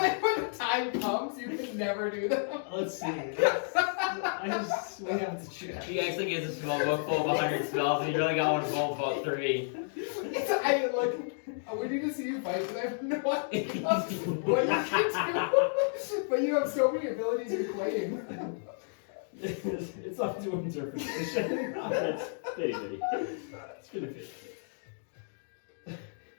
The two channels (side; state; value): right; silent; digital silence